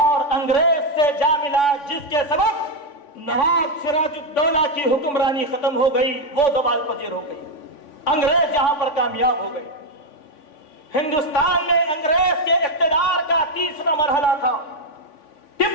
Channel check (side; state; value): right; late; 3.5 ms